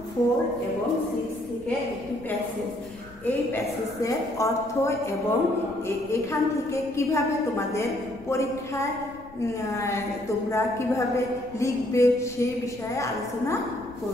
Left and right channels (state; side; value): noise; left; rumble, 22 dB below the sound